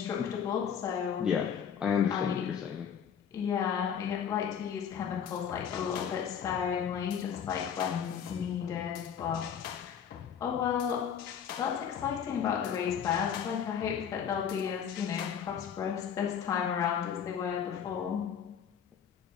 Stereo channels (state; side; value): quieter; right; 7.9 dB